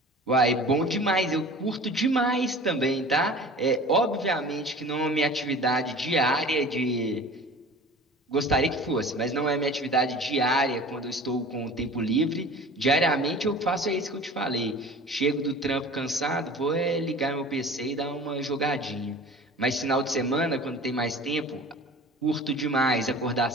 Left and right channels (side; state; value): both; normal; correlation 0.41